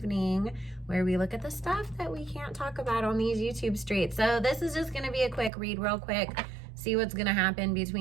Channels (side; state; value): left; drops out; at 5.5 s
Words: where we look at the stuff that we can't talk about on these YouTube streets. So this is just going to be a quick read real quick. See what's going to happen